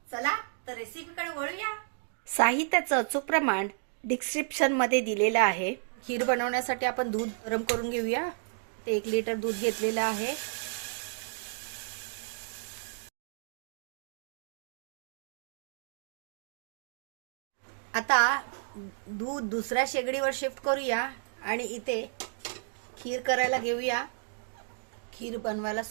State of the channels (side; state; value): left; silent; digital silence